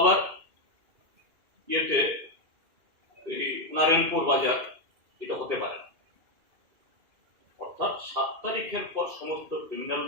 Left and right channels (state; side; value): late; left; 2.5 ms